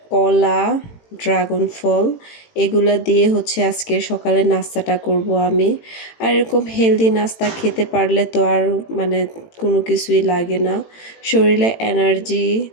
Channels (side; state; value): right; late; 18 ms